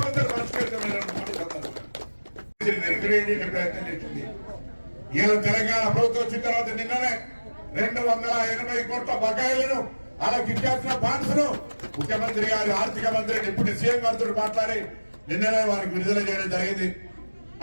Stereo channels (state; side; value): inverted; both; correlation -1.00